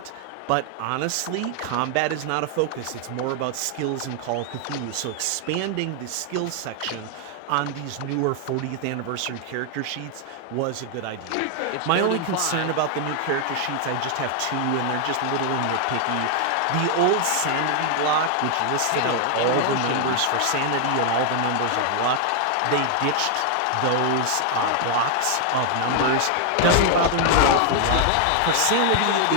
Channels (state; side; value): different; both; correlation 0.00